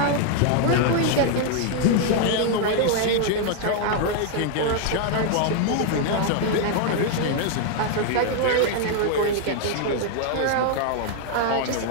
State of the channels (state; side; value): different; both; correlation 0.00